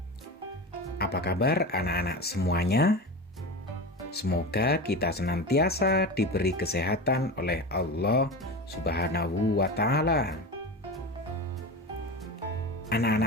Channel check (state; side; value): normal; both; correlation 0.26